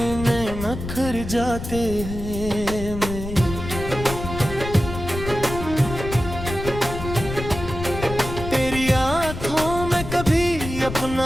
नखर जाते हैं। अपना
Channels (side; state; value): left; noise; rumble, 8 dB below the sound